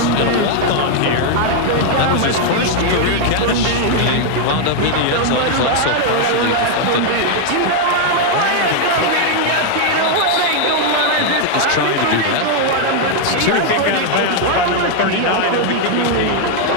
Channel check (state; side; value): different; both; correlation 0.00